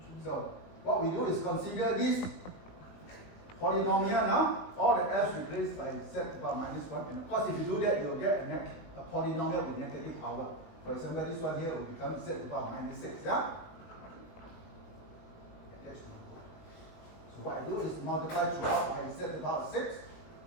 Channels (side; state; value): right; late; 19 ms